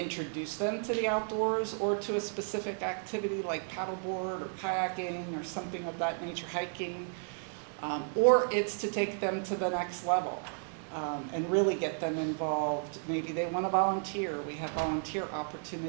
them to the outdoors or to a specific activity like paddleboard or kayaking or something of that nature, hiking, or it's to take them to the next level and really get them involved. Maybe they want to volunteer. We have volunteer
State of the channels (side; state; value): left; silent; 56 dB below the other